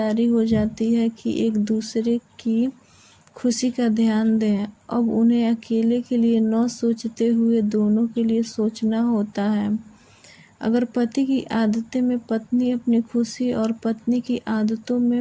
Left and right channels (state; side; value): identical; both; correlation 1.00